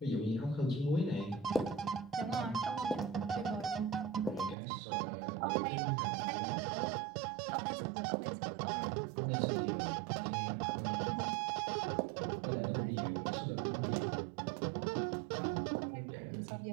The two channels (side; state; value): left; drops out; at 4.5 s